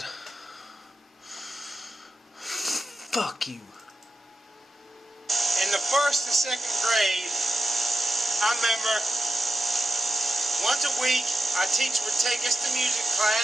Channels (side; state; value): both; normal; correlation 0.91